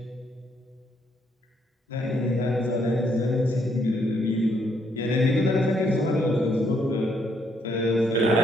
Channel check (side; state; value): both; normal; correlation 0.72